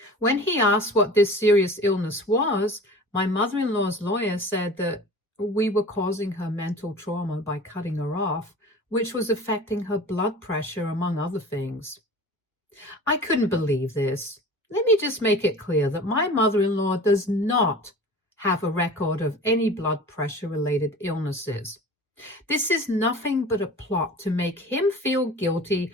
When he asked what this serious illness was, My mother-in-law's lawyer said that we were causing her mental trauma by cutting her off, which was affecting her blood pressure, among other things. I couldn't believe this. Let me just make it clear that my mother-in-law does not have a record of any blood pressure-related illnesses. This is nothing but a plot to make him feel guilty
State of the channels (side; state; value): both; normal; correlation 0.39